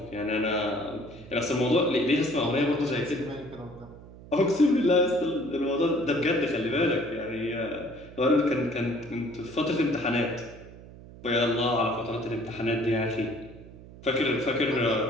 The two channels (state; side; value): noise; right; hum, 18 dB below the sound